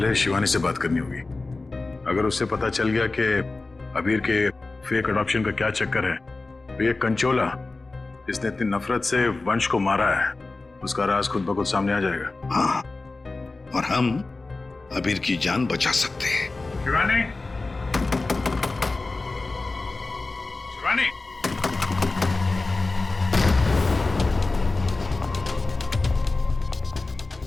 शिवानी से बात करनी होगी। अगर उससे पता चल गया कि अबीर के फेक अडॉप्शन का क्या चक्कर है, तो ये कंचोला इसने इतनी नफरत से वंश को मारा है, उसका राज खुद ब खुद सामने आ जाएगा। हाँ, और हम अबीर की जान बचा सकते हैं। शिवानी, शिवानी,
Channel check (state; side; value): quieter; right; 3.4 dB